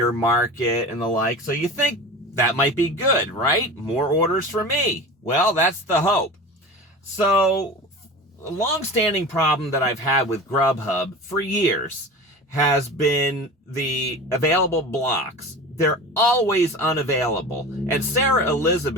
market and the like. So you think that might be good, right? More orders for me. Well, that's the hope. So a long-standing problem that I've had with Grubhub for years has been the available blocks. They're always unavailable. And Sarah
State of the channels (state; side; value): normal; both; correlation 0.33